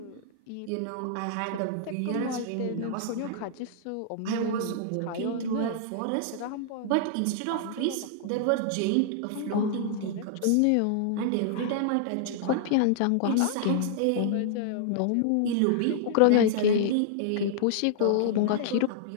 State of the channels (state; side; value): different; both; correlation -0.01